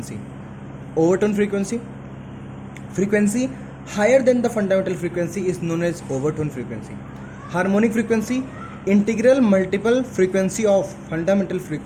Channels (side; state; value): both; identical; correlation 1.00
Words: Overtone frequency, frequency higher than the fundamental frequency is known as overtone frequency. Harmonic frequency, integral multiple frequency of fundamental